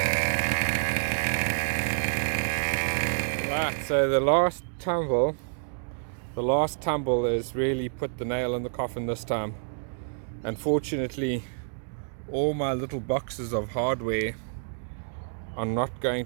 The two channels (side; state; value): left; silent; digital silence